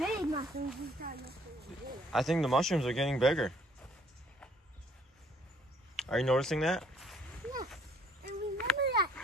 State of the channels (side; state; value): both; normal; correlation 0.61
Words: Big mushrooms. I think the mushrooms are getting bigger. Are you noticing that? Yes. And remember that